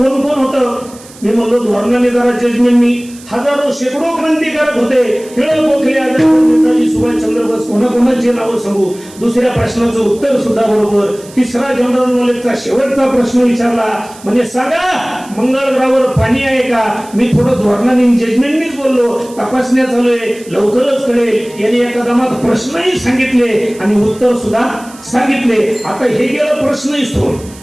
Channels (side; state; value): right; noise; hiss, 21 dB below the sound